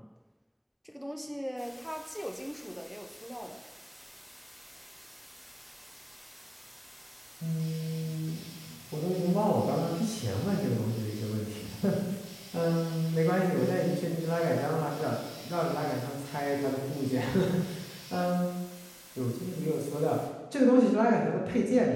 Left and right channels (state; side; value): identical; both; correlation 1.00